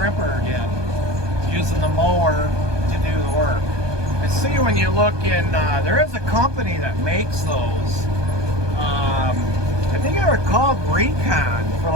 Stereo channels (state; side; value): late; left; 1.2 ms